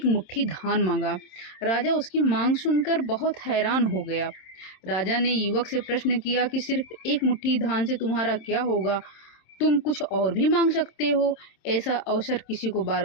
मुट्ठी धान मांगा। राजा उसकी मांग सुनकर बहुत हैरान हो गया। राजा ने युवक से प्रश्न किया कि सिर्फ एक मुट्ठी धान से तुम्हारा क्या होगा? तुम कुछ और भी मांग सकते हो, ऐसा अवसर किसी को बार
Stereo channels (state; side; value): late; right; 27 ms